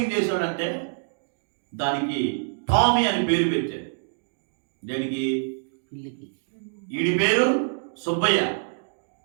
చేశాడంటే దానికి టామీ అని పేరు పెట్టాడు. దానికి వీడి పేరు సుబ్బయ్య,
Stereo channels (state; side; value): silent; left; digital silence